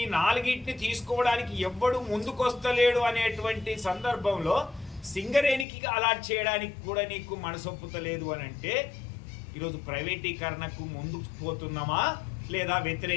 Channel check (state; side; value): drops out; right; at 5.7 s